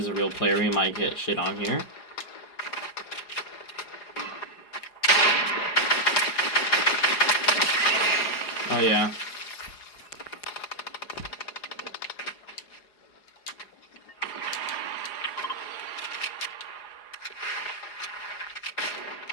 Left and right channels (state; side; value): late; right; 4.8 ms